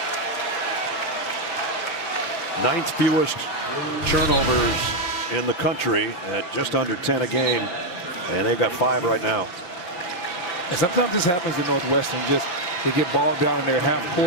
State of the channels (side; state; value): right; late; 5.8 ms